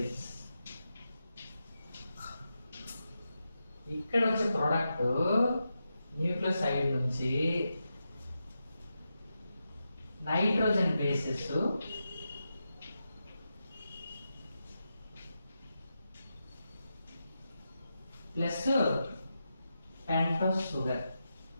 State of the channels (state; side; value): inverted; both; correlation -0.88